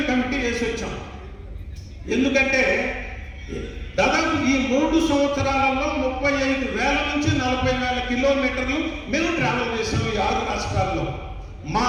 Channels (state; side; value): identical; both; correlation 1.00